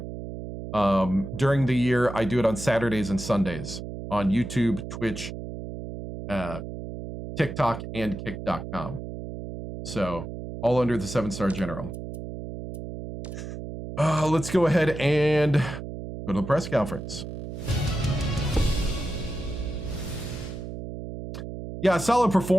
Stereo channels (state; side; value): noise; right; hum, 8 dB below the sound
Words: During the year, I do it on Saturdays and Sundays on YouTube, Twitch, TikTok, and Kick.com. So all under the 7-star general. Let's go ahead and go to the press conference. Yeah, solid